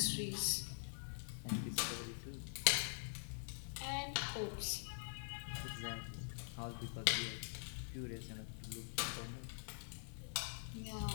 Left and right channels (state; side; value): silent; right; digital silence